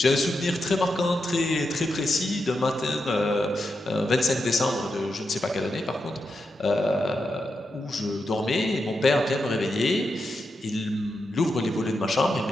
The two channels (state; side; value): normal; both; correlation 0.86